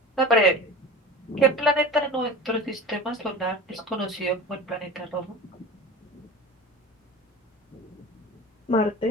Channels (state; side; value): normal; both; correlation 0.34